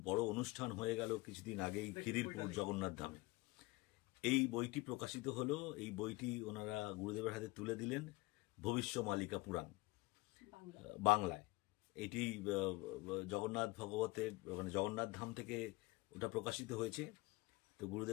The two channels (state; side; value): quieter; right; 22.7 dB